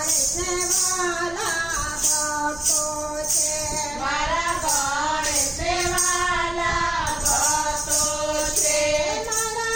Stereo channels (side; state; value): left; noise; rumble, 17 dB below the sound